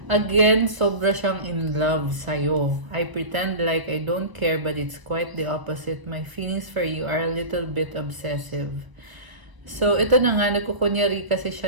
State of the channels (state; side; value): late; left; 1.0 ms